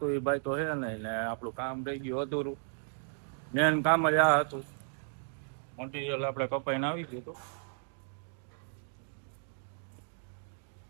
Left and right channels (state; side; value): silent; left; 55 dB below the other